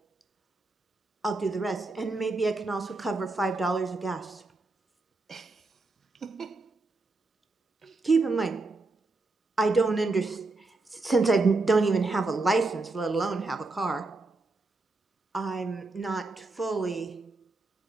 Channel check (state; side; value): quieter; left; 3.4 dB